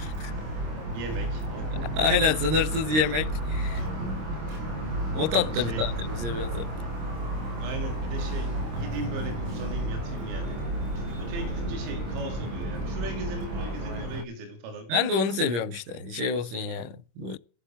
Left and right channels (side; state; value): left; late; 26 ms